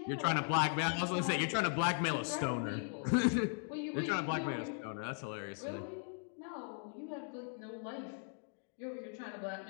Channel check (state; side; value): silent; right; 52 dB below the other